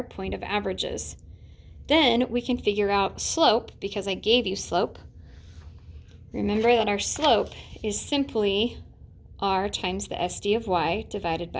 point of averages. Then we can figure out slope, because I gave you slope. Remember that our slope is simply r times the SD of y divided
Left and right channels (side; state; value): both; identical; correlation 1.00